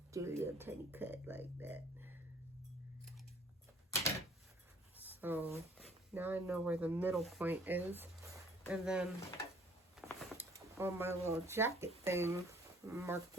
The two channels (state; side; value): normal; both; correlation 0.57